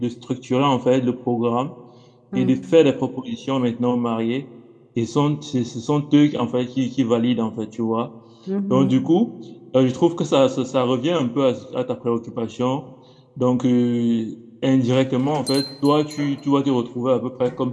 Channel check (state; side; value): identical; both; correlation 1.00